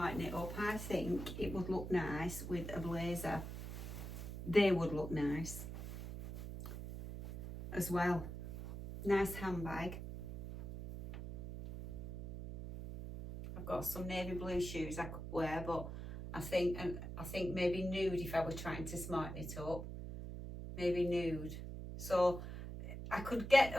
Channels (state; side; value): noise; right; hum, 8 dB below the sound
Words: it up. I think it would look nice with a blazer. They would look nice as well. Nice handbag. I've got some navy blue shoes I could wear, but I think maybe nude if I were trying to smarten it up. Maybe nude. So I could get